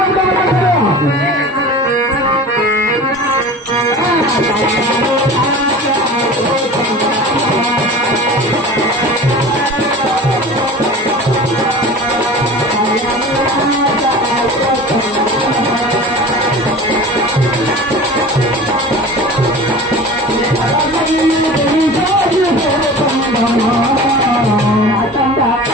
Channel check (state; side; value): normal; both; correlation 0.38